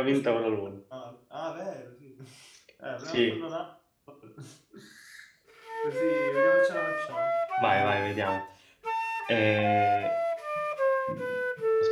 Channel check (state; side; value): identical; both; correlation 1.00